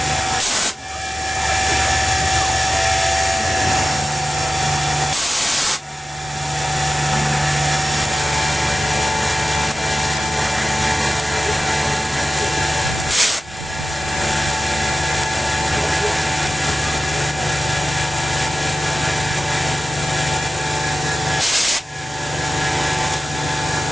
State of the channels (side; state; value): both; normal; correlation 0.95